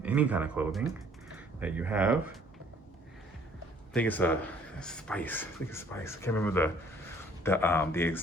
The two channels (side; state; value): both; normal; correlation 0.58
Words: any kind of clothing that you have. I think it's a spice. I can't remember the